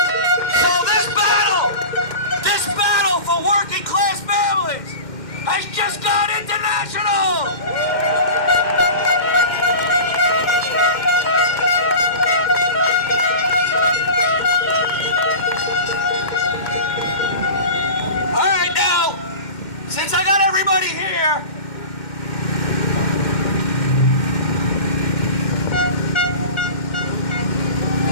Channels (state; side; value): late; right; 2.1 ms